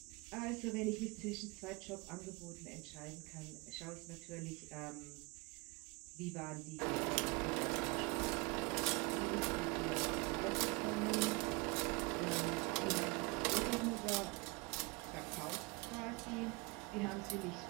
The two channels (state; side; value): quieter; left; 27.1 dB